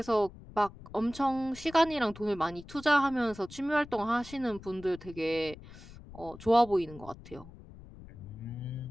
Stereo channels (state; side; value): noise; left; rumble, 17 dB below the sound